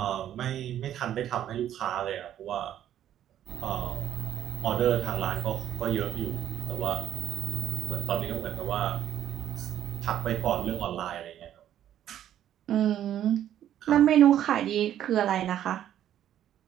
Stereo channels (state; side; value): quieter; left; 11.1 dB